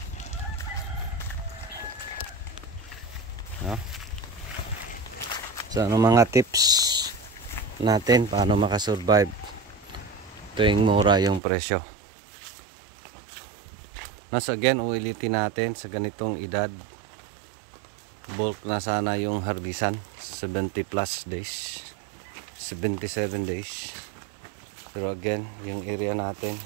No? So ano mga tips natin paano makasurvive tuwing mura yung presyo? So again, ulitin natin sa ganitong edad, bulk na sana yung harbisan, 70 plus days, 77 days. Pero again, yung area natin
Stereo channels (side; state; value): left; drops out; at 11.4 s